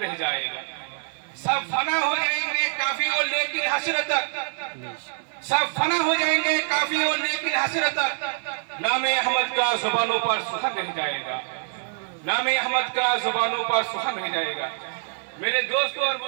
जाएगा। सब फना हो जाएंगे काफी और लेकिन हसरत तक, सब फना हो जाएंगे काफी और लेकिन हसरत तक नामे अहमद का जुबानों पर सुखन रह जाएगा, नामे अहमद का जुबानों पर सुखन रह जाएगा। मेरे दोस्तों और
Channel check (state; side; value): silent; left; digital silence